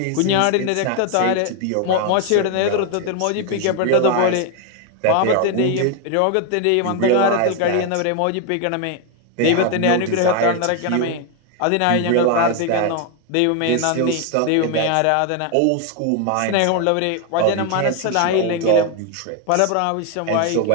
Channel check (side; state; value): both; different; correlation 0.01